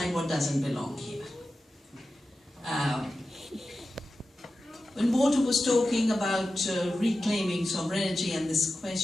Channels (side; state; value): both; normal; correlation 0.93